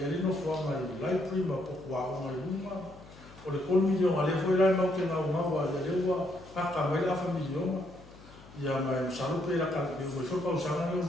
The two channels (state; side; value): noise; left; hum, 21 dB below the sound